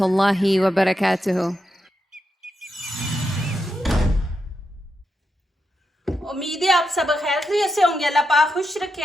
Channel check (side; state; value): both; normal; correlation 0.85